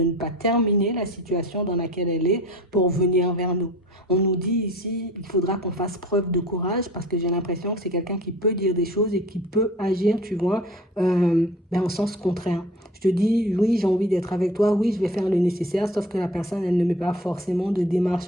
ne pas terminer la situation dans laquelle elle est pour venir vers nous. On nous dit ici, il faudra qu'on fasse preuve de courage parce que j'ai l'impression que c'est quelqu'un qui peut dire des choses et qui peut agir, tu vois, en sens contraire. Je te dis, oui, j'ai envie d'être avec toi, oui, je vais faire le nécessaire, sauf que la personne, elle ne met pas forcément de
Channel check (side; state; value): both; normal; correlation 0.43